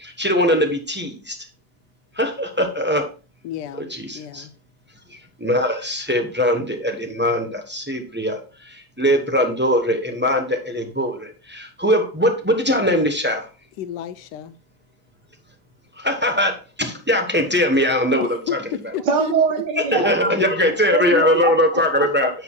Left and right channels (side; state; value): both; normal; correlation 0.16